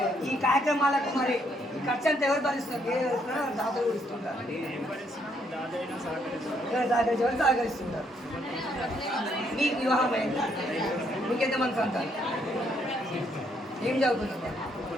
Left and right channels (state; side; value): normal; both; correlation 0.71